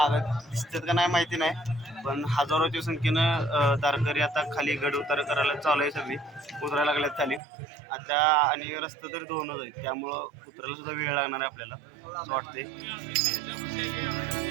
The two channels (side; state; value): left; drops out; at 7.4 s